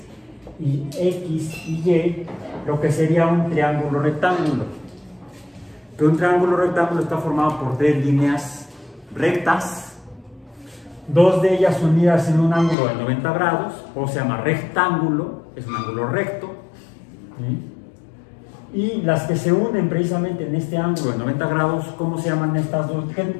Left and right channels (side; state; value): right; drops out; at 12.8 s